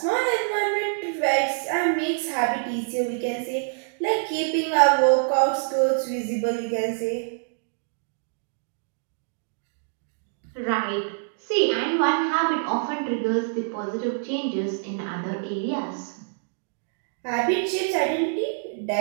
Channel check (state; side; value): silent; left; digital silence